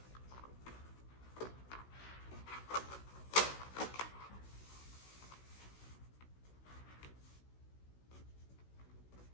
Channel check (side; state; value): right; late; 16 ms